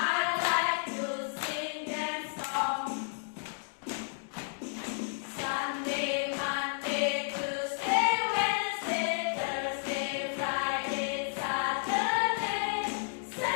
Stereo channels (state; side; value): silent; right; digital silence